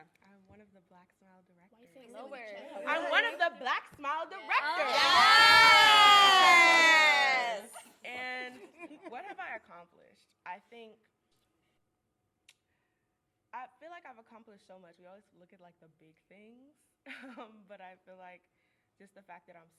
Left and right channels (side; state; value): both; identical; correlation 1.00